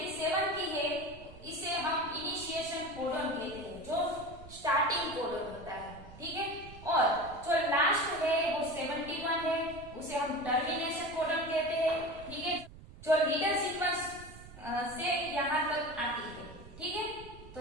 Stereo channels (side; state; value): right; noise; rumble, 17 dB below the sound